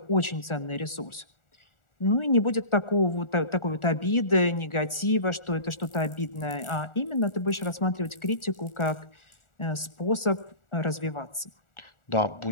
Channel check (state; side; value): late; right; 1.4 ms